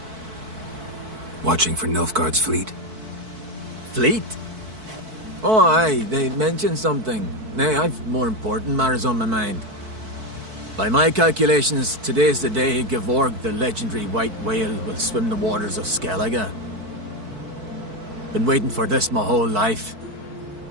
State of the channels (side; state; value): left; late; 4.5 ms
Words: Watching for Nilfgaard's fleet? Fleet? Oh, aye, they mentioned something. Nay, I've more important matters on my mind. By my calculations, today's the day Gevorg, the legendary white whale, will swim the waters of Skellige. Been waiting for this my whole life.